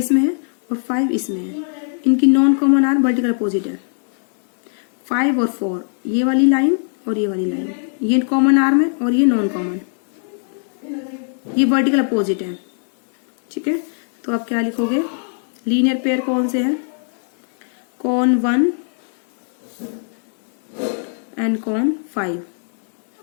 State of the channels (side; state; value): right; silent; 60 dB below the other